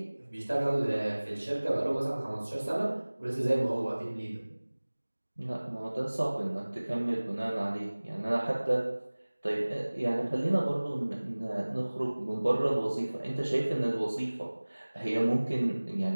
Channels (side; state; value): both; inverted; correlation -1.00